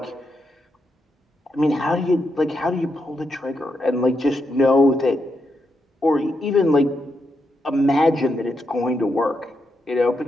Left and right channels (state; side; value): normal; both; correlation 0.83